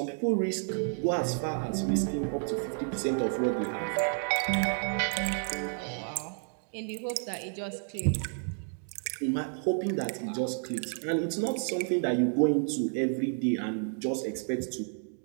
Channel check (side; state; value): left; silent; 57 dB below the other